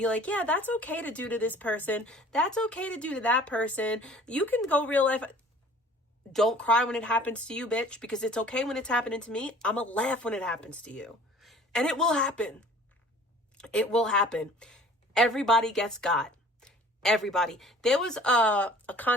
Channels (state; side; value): normal; both; correlation 0.49